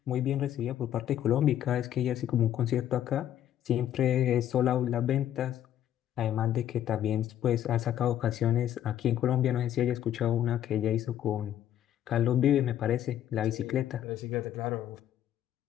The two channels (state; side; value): quieter; right; 11.3 dB